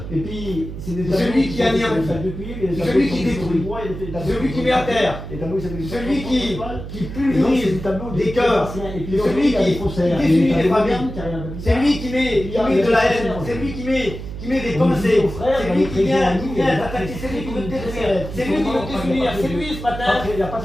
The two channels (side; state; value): right; noise; hum, 9 dB below the sound